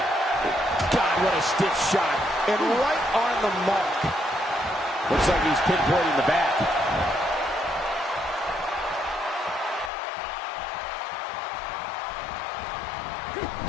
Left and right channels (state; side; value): drops out; right; at 9.9 s